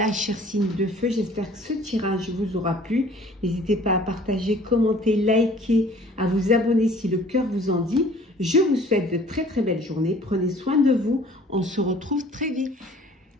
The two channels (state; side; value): normal; both; correlation 0.52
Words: chers signes de feu, j'espère que ce tirage vous aura plu. N'hésitez pas à partager, commenter, liker, à vous abonner si le cœur vous en dit. Je vous souhaite de très très belles journées. Prenez soin de vous. On se retrouve très vite.